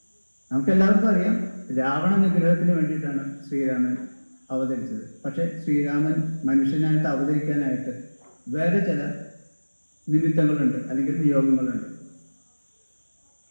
നമുക്കെല്ലാവർക്കും അറിയാം, രാവണ നിഗ്രഹത്തിന് വേണ്ടിയിട്ടാണ് ശ്രീരാമൻ അവതരിച്ചത്. പക്ഷെ ശ്രീരാമൻ മനുഷ്യനായിട്ട് അവതരിക്കാനായിട്ട് വേറെ ചില നിമിത്തങ്ങളുണ്ട്, അല്ലെങ്കിൽ നിയോഗങ്ങളുണ്ട്.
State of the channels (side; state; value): both; inverted; correlation -1.00